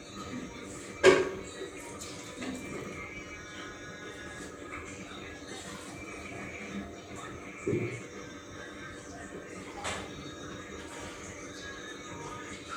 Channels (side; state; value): both; identical; correlation 1.00